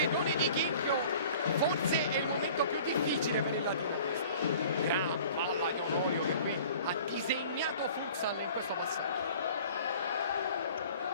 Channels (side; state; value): both; inverted; correlation -0.47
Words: di Chinchio, forse è il momento più difficile per il Latino. Gran palla di Onorio che qui ha disegnato Futsal in questo passaggio.